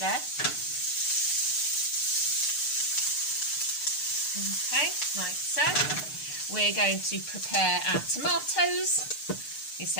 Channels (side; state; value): right; late; 6.6 ms